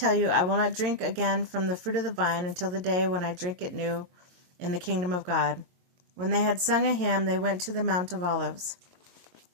you, I will not drink again from the fruit of the vine until the day when I drink it new in the kingdom of God." When they had sung a hymn, they went to the Mount of Olives.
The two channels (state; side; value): late; left; 22 ms